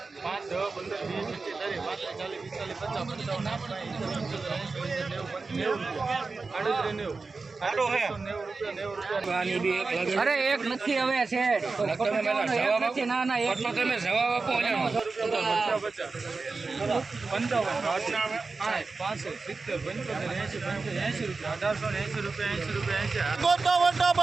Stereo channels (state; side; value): quieter; left; 4.1 dB